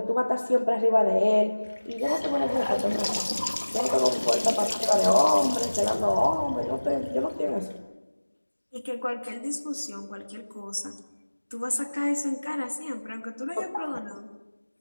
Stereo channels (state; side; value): inverted; both; correlation -1.00